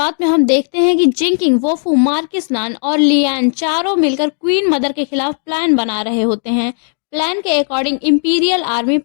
में हम देखते हैं कि जिंकिंग, वोफू, मार्किस नान और लियान चारों मिलकर क्वीन मदर के खिलाफ प्लान बना रहे होते हैं। प्लान के अकॉर्डिंग इंपीरियल आर्मी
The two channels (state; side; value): silent; right; digital silence